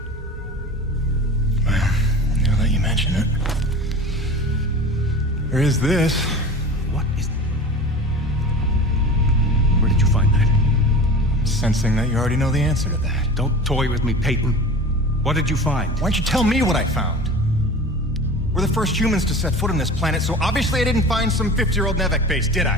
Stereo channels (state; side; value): normal; both; correlation 0.36